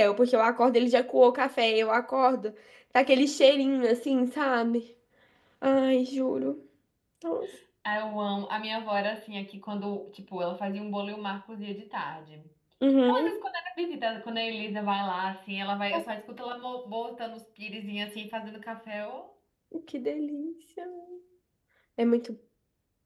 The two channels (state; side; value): identical; both; correlation 1.00